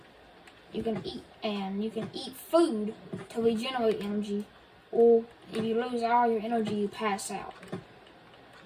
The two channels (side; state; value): both; identical; correlation 1.00